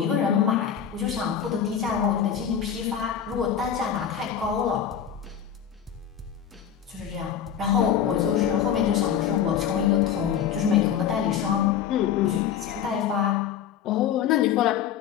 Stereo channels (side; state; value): right; quieter; 8.8 dB